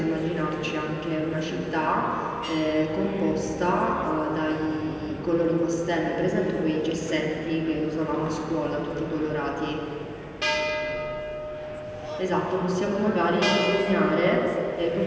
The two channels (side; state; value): both; identical; correlation 1.00